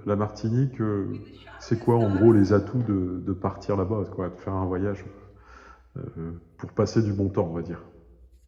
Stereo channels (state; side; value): identical; both; correlation 1.00